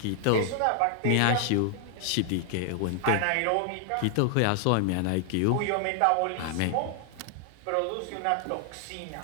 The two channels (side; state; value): both; different; correlation 0.00